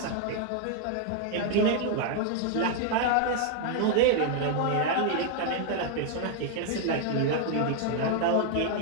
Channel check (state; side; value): different; both; correlation 0.00